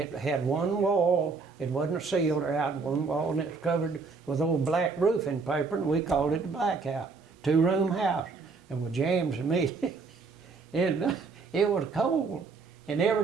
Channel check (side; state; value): left; quieter; 4.5 dB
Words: had one wall. It wasn't sealed or out, one wall, and it's covered with old black roofing paper, and we called it the black house, 2-room house. And with James and me, and it was cold. And